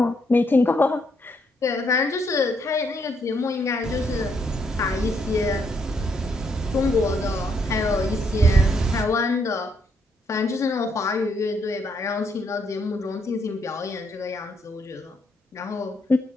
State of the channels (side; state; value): both; normal; correlation 0.74